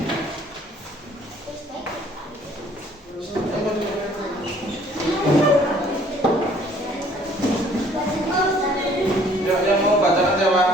Yang mau bacakan siapa?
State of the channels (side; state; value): both; normal; correlation 0.58